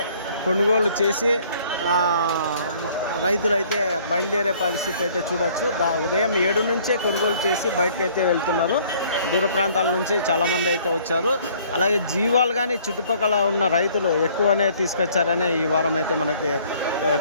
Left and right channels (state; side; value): inverted; both; correlation -0.59